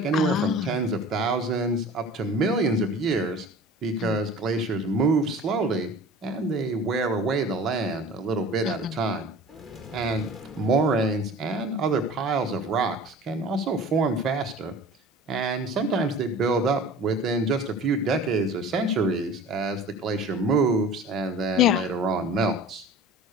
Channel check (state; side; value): normal; both; correlation 0.41